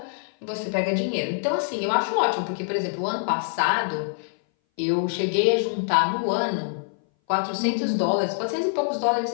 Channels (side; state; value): right; silent; 60 dB below the other